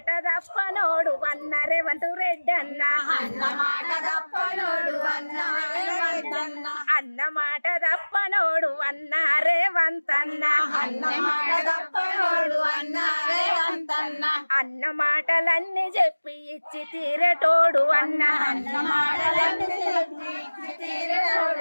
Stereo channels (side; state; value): both; inverted; correlation -1.00